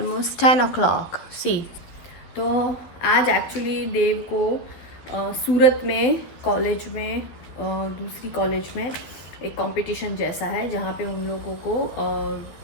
10 o'clock। सी तो आज एक्चुअली देव को सूरत में कॉलेज में दूसरी कॉलेज में एक कंपटीशन जैसा है जहाँ पे उन लोगों को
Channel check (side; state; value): right; late; 12 ms